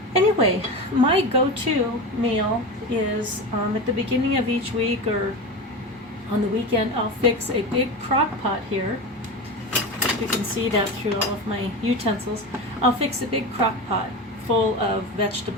anyway, my go-to meal is at the beginning of each week or on the weekend, I'll fix a big crock pot here. You can see that through all of my utensils. I'll fix a big crock pot full of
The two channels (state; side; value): normal; both; correlation 0.24